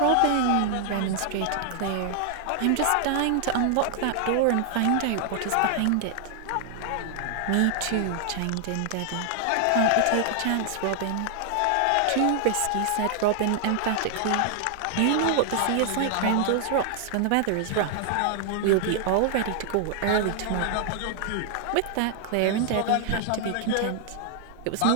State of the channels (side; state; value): both; different; correlation 0.00